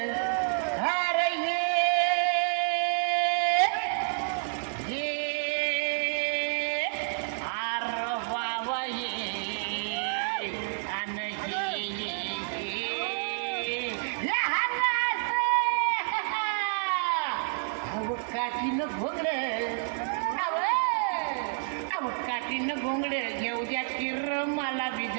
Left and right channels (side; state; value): left; silent; digital silence